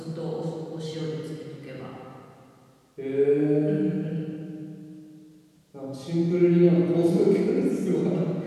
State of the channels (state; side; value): identical; both; correlation 1.00